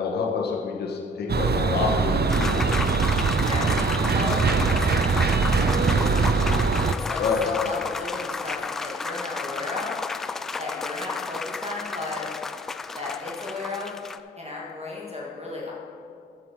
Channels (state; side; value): normal; both; correlation 0.54